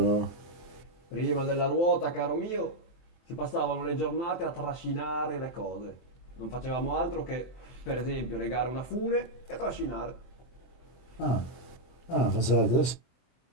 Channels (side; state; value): right; late; 24 ms